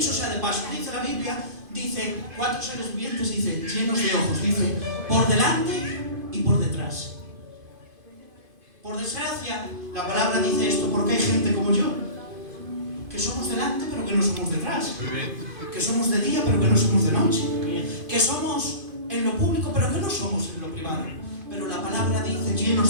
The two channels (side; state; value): left; late; 2.5 ms